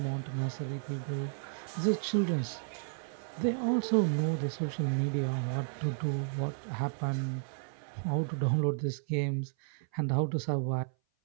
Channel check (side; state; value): left; silent; 56 dB below the other